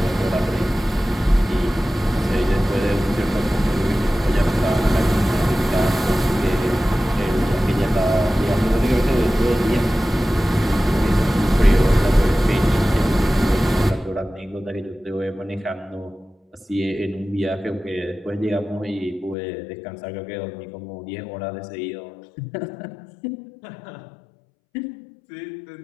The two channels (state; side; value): drops out; right; at 19.4 s